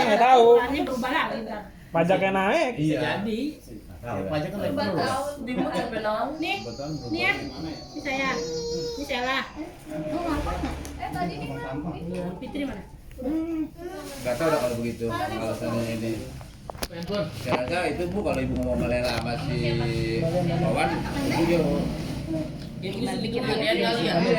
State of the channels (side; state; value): both; identical; correlation 1.00